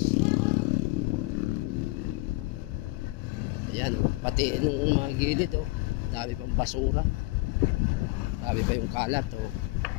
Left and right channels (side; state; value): right; quieter; 22.8 dB